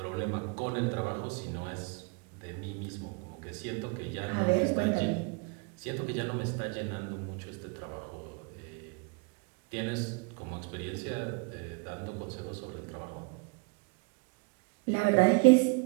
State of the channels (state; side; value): quieter; left; 31.1 dB